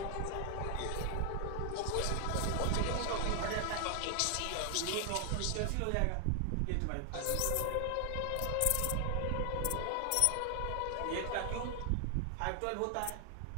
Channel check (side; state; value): both; different; correlation 0.00